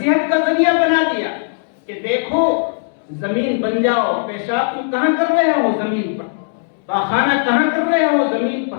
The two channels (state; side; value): silent; right; 68 dB below the other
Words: کا ذریعہ بنا دیا کہ دیکھو زمین بن جاؤ، پیشاب تم کہاں کر رہے ہو؟ زمین پر۔ پاخانہ کہاں کر رہے ہو؟ زمین